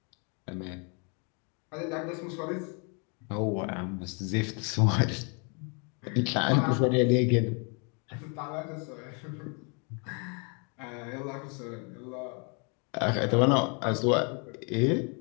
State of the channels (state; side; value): quieter; right; 36.0 dB